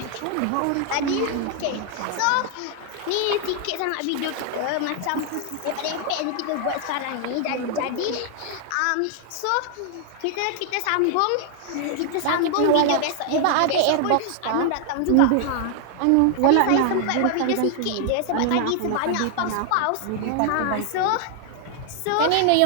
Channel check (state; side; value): different; both; correlation 0.00